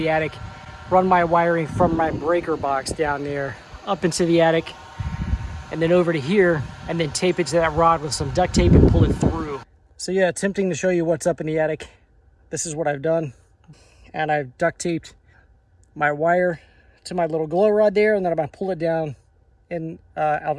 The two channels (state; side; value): identical; both; correlation 1.00